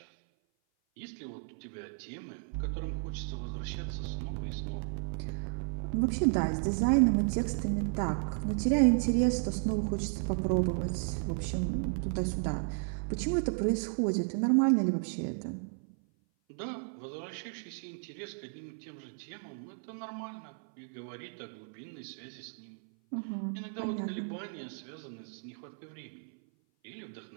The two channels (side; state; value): left; silent; 55 dB below the other